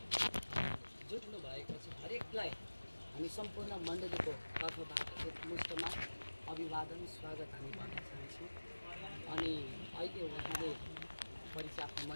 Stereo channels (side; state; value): both; inverted; correlation -1.00